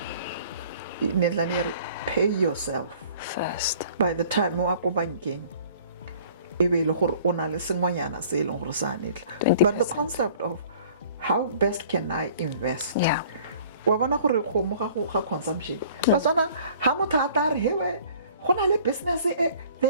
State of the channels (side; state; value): both; inverted; correlation -0.51